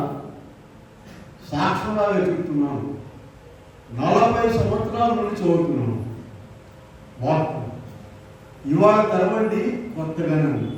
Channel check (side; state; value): both; identical; correlation 1.00